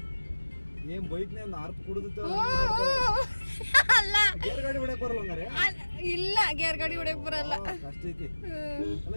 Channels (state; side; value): inverted; both; correlation -1.00